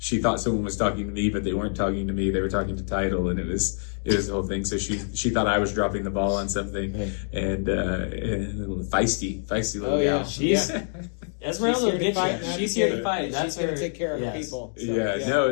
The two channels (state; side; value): silent; right; digital silence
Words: thought someone was talking to me, but they weren't talking to me. They were talking to Title, and it was the whole thing. So she thought I was dropping the ball on something, and a little feisty little gal. She's Esmeralda will get you. She's here to fight. She's going to take care of her people.